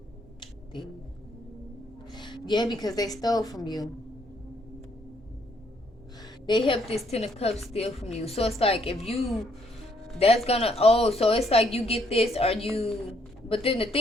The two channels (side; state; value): both; normal; correlation 0.70